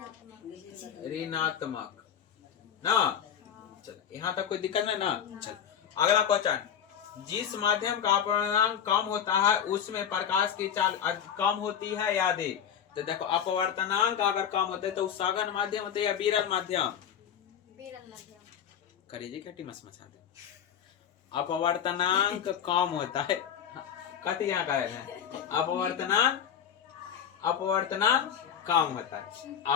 ऋणात्मक ना। चल यहाँ तक कोई दिक्कत नहीं ना। चल अगला क्वेश्चन, जिस माध्यम का अपवर्तनांक कम होता है उसमें प्रकाश की चाल कम होती है या अधिक। तो देखो अपवर्तनांक अगर कम होता है तो सघन माध्यम होता है या विरल माध्यम, करिए क्या मसा दे। अपवर्तनांक कम होता है, कथी यहाँ का है अपवर्तनांक कम होता है,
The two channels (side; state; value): right; quieter; 8.7 dB